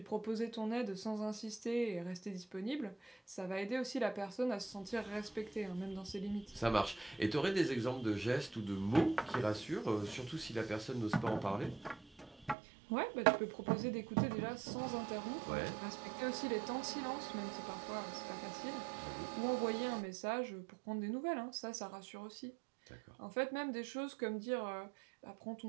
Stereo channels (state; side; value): drops out; left; at 12.6 s